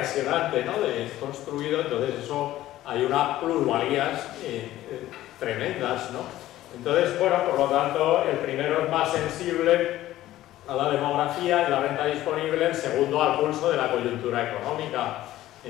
¿no? De construido, entonces eso hay unas plusvalías tremendas, ¿no? Entonces, bueno, por lo tanto, el primero es más sensible a la demografía y la renta disponible, el segundo al pulso de la coyuntura económica.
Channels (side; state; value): right; quieter; 14.6 dB